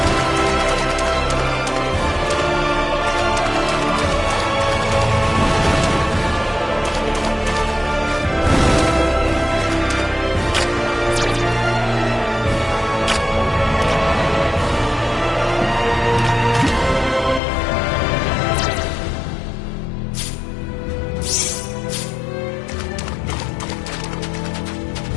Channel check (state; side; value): drops out; right; at 17.4 s